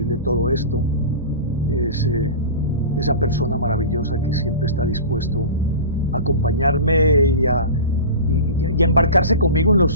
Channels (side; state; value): both; inverted; correlation -0.32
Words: todo esto. Es esa persona maravillosa que siempre está dispuesto a acompañarme y a embarcarse conmigo